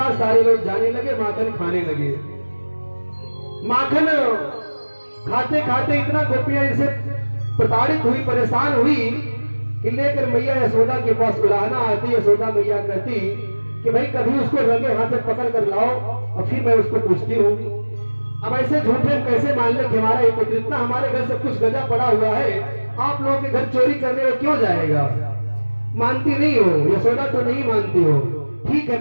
सारे लोग जाने लगे, माखन खाने लगे। माखन खाते खाते इतना गोपियां इनसे प्रताड़ित हुई, परेशान हुई कि लेकर मैया यशोदा के पास बुलाना आती। यशोदा मैया कहती कि भाई कभी उसको रंगे हाथ से पकड़ कर लाओ और फिर मैं उसको पूछती हूँ। अब ऐसे झूठे हम कैसे मान ले कि हमारा एक पुत्र इतना हमारे घर सब कुछ गजा पड़ा हुआ है, आप लोगों के घर चोरी करने में क्यों जाएगा? मानती नहीं हो, यशोदा तो नहीं मानती हो। ठीक है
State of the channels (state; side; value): inverted; both; correlation -1.00